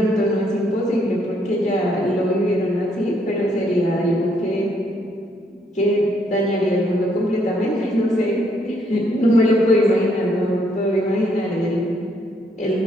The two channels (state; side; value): normal; both; correlation 0.71